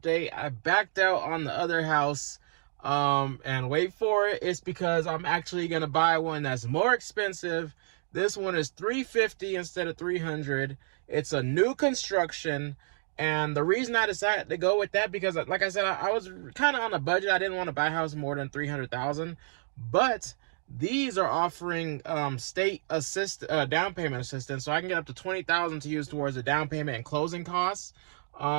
I backed out on the other house, and wait for it, it's because I'm actually gonna buy one that's more expensive. This one is $350 instead of $300. It's a new construction. And the reason I decided to go with that, because like I said, I was kind of on a budget. I didn't want to buy a house more than $300,000, but these are offering state down payment assistance, so I can get up to $20,000 to use towards the down payment and closing costs.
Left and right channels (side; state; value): left; silent; digital silence